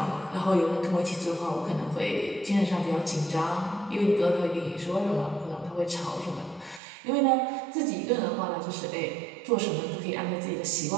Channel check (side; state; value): left; drops out; at 6.8 s